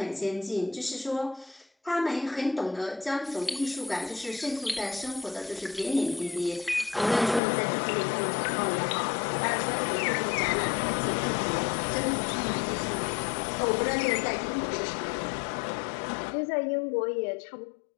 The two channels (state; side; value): drops out; right; at 7.4 s